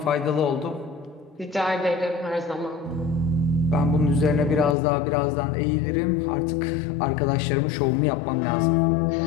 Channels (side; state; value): right; drops out; at 4.8 s